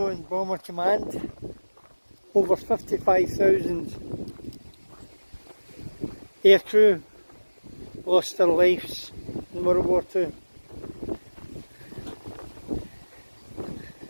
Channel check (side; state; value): both; inverted; correlation -1.00